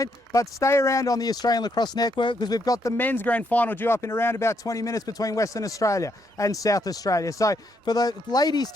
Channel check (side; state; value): both; normal; correlation 0.76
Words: But stay around on the Australian Lacrosse Network because we've got the men's grand final due up in around about 20 minutes between Western Australia and South Australia. So for the ladies